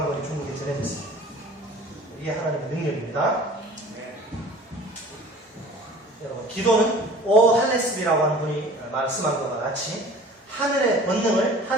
권이 중국에 전해졌습니다. 이게 하나님의 능력입니다. 여러분, 기도는 오할레스비라고 하는 분이 말씀한 것과 같이 하늘의 권능을,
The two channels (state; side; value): normal; both; correlation 0.44